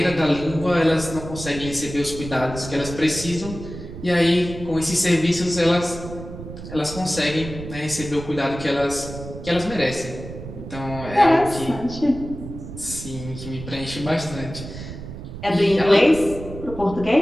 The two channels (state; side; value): noise; right; rumble, 11 dB below the sound